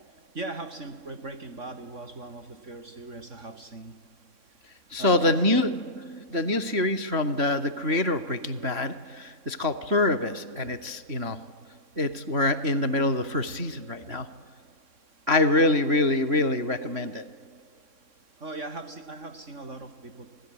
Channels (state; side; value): late; left; 3.6 ms